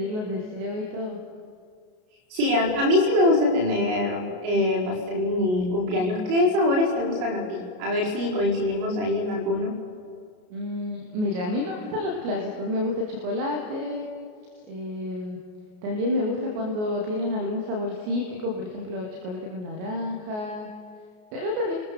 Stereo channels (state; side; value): late; left; 33 ms